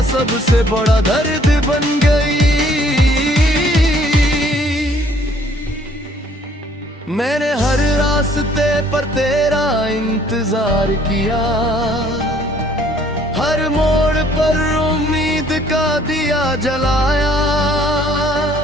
सबसे बड़ा दर्द बन गई। मैंने हर रास्ते पर तेरा इंतजार किया, हर मोड़ पर उम्मीद का दिया जलाया,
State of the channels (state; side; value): normal; both; correlation 0.60